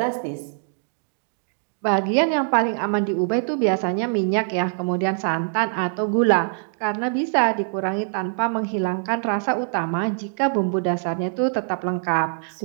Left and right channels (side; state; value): left; silent; digital silence